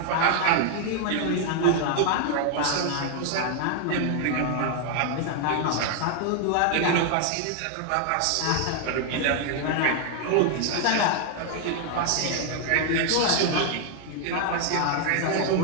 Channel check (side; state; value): both; different; correlation 0.00